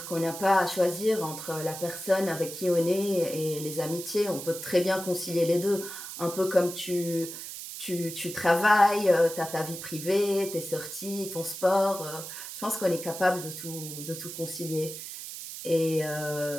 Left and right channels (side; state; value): right; noise; hiss, 9 dB below the sound